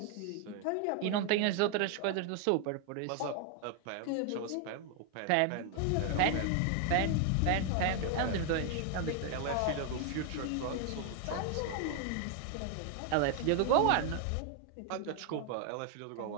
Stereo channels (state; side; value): different; both; correlation 0.00